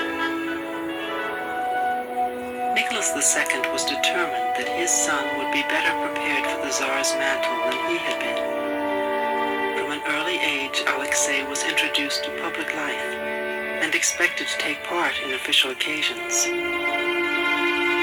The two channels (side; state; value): both; identical; correlation 1.00